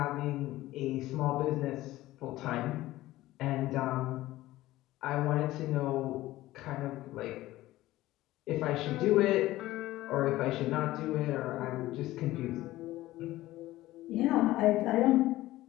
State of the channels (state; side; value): quieter; right; 16.5 dB